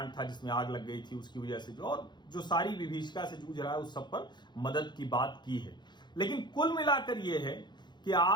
था जिसमें आग लग गई थी उसकी वजह से जो सारी विभीषिका से जूझ रहा है उस सब पर मदद की बात की है। लेकिन कुल मिलाकर यह है कि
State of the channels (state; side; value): late; right; 0.21 ms